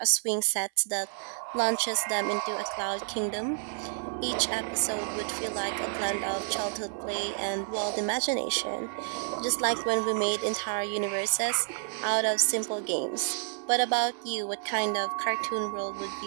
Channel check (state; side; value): silent; left; 58 dB below the other